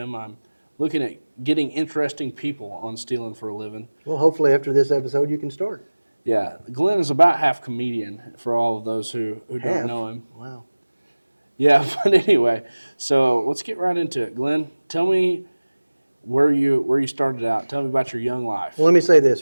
I'm looking at getting interesting people on Steelin for a living. Well, hopefully after this episode you can start. Yeah, Glenn is about half comedian for all of those who don't know him. Wow. Yeah, but anyway, so let's get right into it. Glenn, tell me where you started out. Tell me about your young life. Well, let me say this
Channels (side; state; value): both; inverted; correlation -1.00